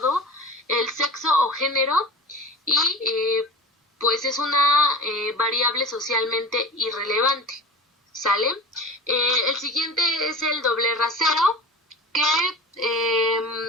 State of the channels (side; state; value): both; normal; correlation 0.32